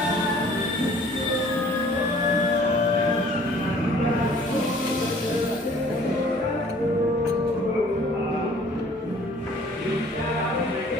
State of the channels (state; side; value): normal; both; correlation 0.54